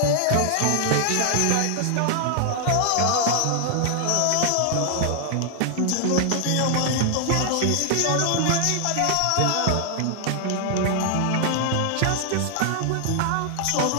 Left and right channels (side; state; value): both; different; correlation 0.00